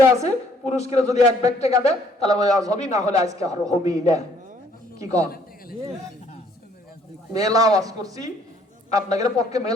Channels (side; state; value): both; normal; correlation 0.63